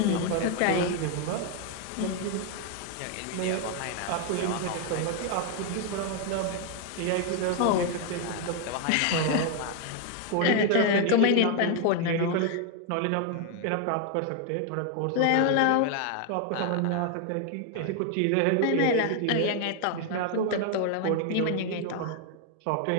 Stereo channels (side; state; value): both; different; correlation 0.00